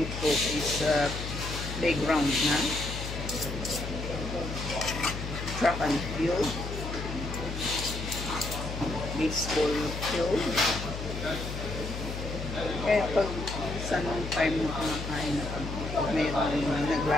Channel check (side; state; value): left; noise; hum, 6 dB below the sound